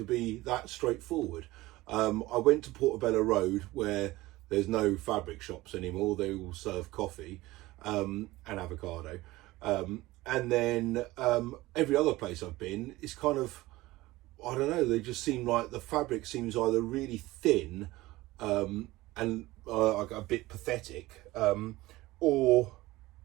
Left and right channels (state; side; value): quieter; left; 18.7 dB